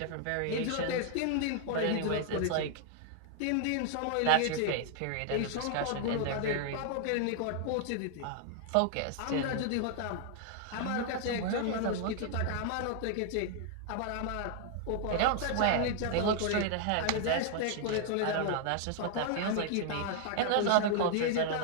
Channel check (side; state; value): both; different; correlation 0.00